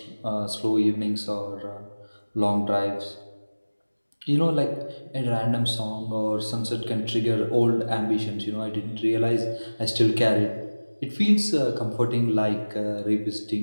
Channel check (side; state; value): both; inverted; correlation -1.00